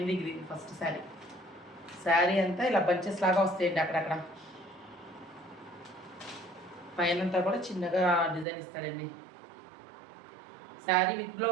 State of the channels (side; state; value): left; drops out; at 8.5 s